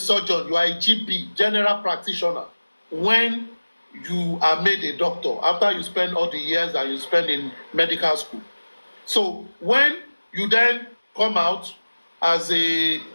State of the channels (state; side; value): inverted; both; correlation -1.00